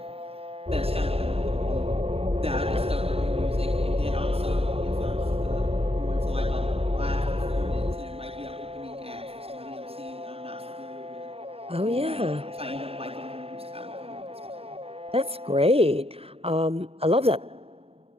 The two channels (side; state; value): left; late; 0.28 ms